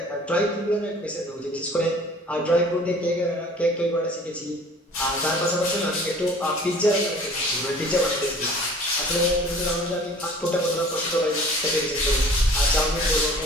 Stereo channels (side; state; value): both; normal; correlation 0.48